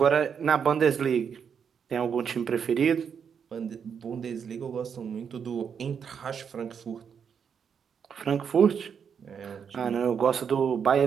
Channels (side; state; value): left; quieter; 7.1 dB